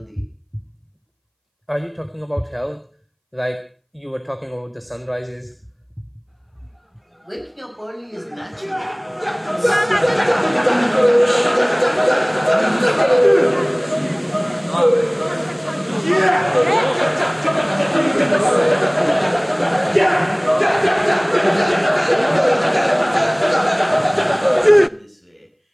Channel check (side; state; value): both; identical; correlation 1.00